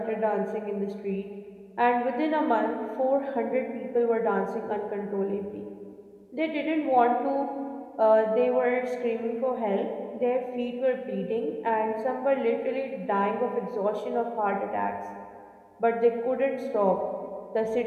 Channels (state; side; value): identical; both; correlation 1.00